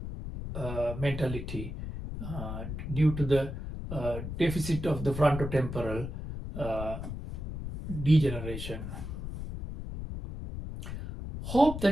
mentality due to the deficit of the frontotemporal degeneration. Hope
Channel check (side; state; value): left; noise; rumble, 7 dB below the sound